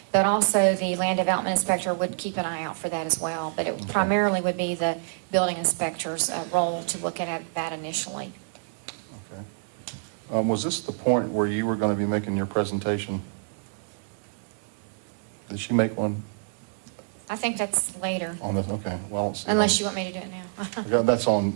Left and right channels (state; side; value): silent; left; digital silence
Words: but also the land development inspector would keep an eye out for that as well. But it primarily would be the building inspector's role to look at that initially. Was this the point where you were going to be making your presentation? Did she make one I think that's later, on this? Okay, well, let's see. unless you want me to do it now. Yeah, that's